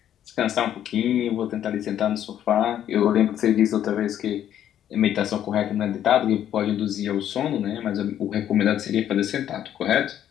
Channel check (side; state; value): right; quieter; 10.7 dB